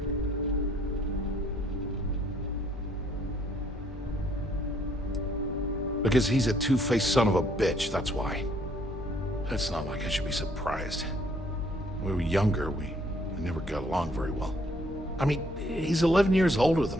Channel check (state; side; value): normal; both; correlation 0.65